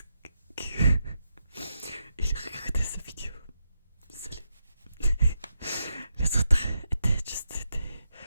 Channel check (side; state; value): both; inverted; correlation -0.83